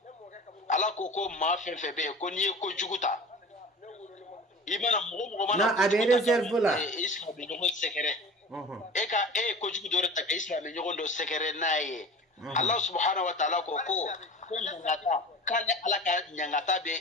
ala ko ma fefe be ko ni ko juguta imana mo mana na abe réserve la islam be no secret eka ko jugu dore ta islam be nyogo do secret naye Allah subhanahu wa ta'ala ko nyangata kale ala ka nyangata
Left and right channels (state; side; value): normal; both; correlation 0.37